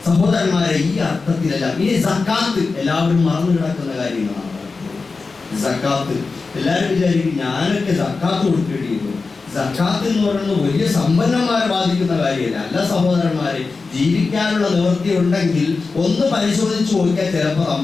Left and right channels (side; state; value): right; quieter; 4.2 dB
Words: സഹോദരന്മാരെ, ഈ അർത്ഥത്തിലല്ല. ഇനി സക്കാത്ത് എല്ലാവരും മറന്നു കിടക്കുന്ന കാര്യങ്ങളാണ്. സക്കാത്ത് എല്ലാവരും വിചാരിക്കും ഞാനൊക്കെ സക്കാത്ത് കൊടുക്കേണ്ടി വരും. സക്കാത്ത് എന്ന് പറയുന്നത് വലിയ സമ്പന്നന്മാരെ ബാധിക്കുന്ന കാര്യമല്ല. അല്ല സഹോദരന്മാരെ, ജീവിക്കാനുള്ള നിവൃത്തി ഉണ്ടെങ്കിൽ ഒന്ന് പരിശോധിച്ച് നോക്കിയാൽ ചിലപ്പോൾ